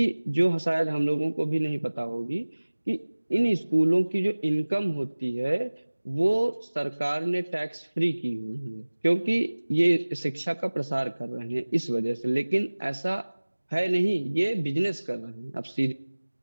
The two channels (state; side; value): inverted; both; correlation -1.00